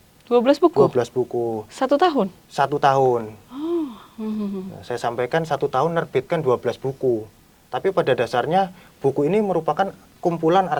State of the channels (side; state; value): both; identical; correlation 1.00